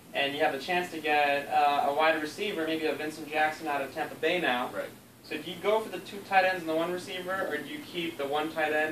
And you have the chance to get a wide receiver, maybe a Vincent Jackson out of Tampa Bay now. Right. So do you go for the 2 tight ends and the 1 receiver, or do you keep the 1 tight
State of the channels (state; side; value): identical; both; correlation 1.00